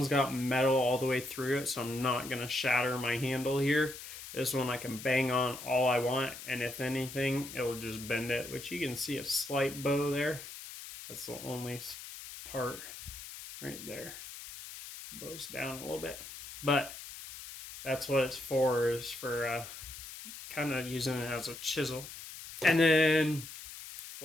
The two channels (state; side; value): noise; left; hiss, 12 dB below the sound